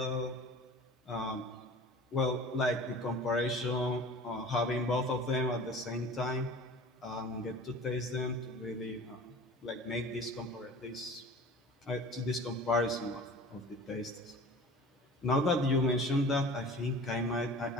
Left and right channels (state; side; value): normal; both; correlation 0.41